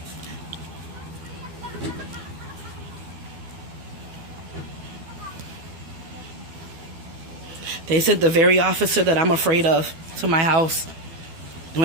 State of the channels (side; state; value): left; late; 12 ms